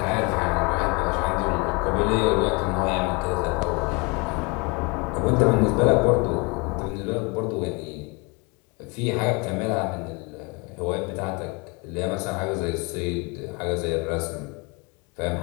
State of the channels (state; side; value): quieter; right; 29.3 dB